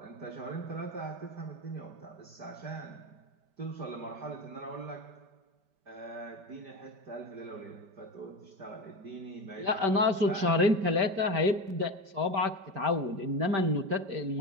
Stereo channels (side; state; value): left; late; 5.1 ms